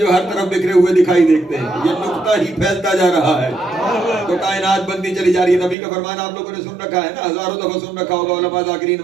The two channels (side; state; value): left; drops out; at 5.8 s